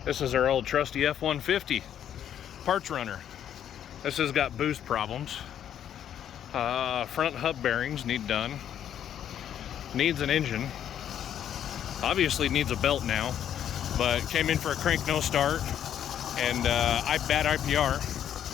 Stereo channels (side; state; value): right; quieter; 9.9 dB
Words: This is our old trusty F-150 parts runner. This has got boost problems. Front hub bearings need done. Needs an engine. Obviously needs a belt now, but came in for a crank no start and bad IPR.